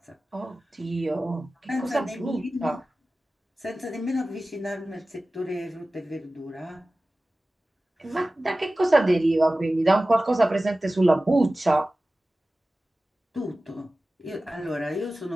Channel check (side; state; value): both; normal; correlation 0.96